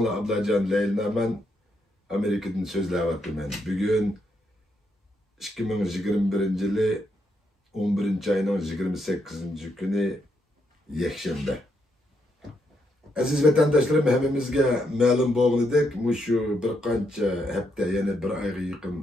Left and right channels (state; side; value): normal; both; correlation 0.78